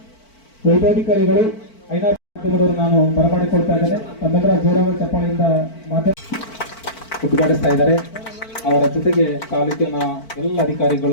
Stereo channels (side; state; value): right; late; 4.5 ms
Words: ವೈದ್ಯಾಧಿಕಾರಿಗಳು ಐನಾರು ನಾನು ಬರಮಾಡಿಕೊಳ್ತಾ ಇದ್ದೇನೆ. ತಮ್ಮೆಲ್ಲರ ಜೋರಾದ ಚಪ್ಪಾಳೆಯಿಂದ ಉದ್ಘಾಟಿಸ್ತಾ ಇದ್ದಾರೆ. ಅವರ ಜೊತೆಗೆ ತಾಲೂಕಿನ ಎಲ್ಲ